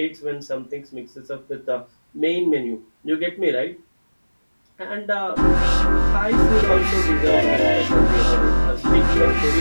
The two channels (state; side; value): inverted; both; correlation -1.00